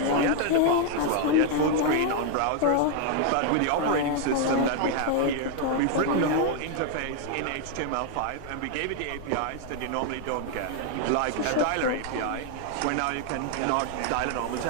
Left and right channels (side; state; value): both; different; correlation 0.00